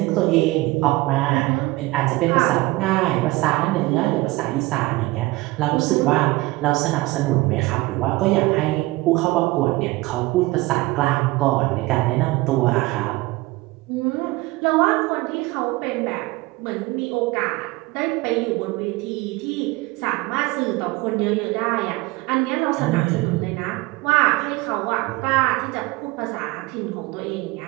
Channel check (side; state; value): left; quieter; 21.2 dB